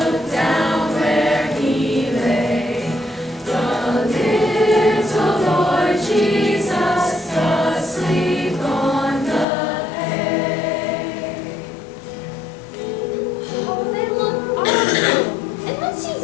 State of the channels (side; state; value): right; drops out; at 9.5 s